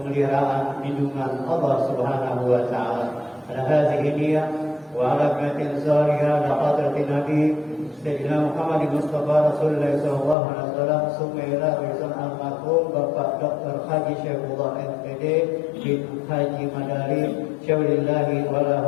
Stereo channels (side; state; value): right; drops out; at 10.4 s